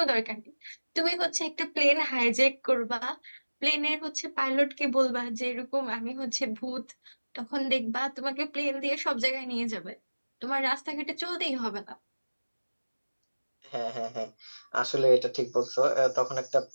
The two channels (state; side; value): inverted; both; correlation -1.00